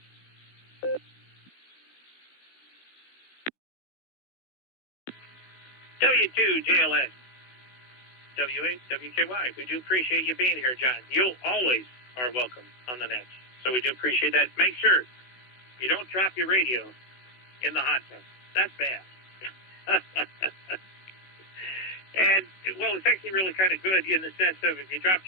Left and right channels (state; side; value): late; right; 16 ms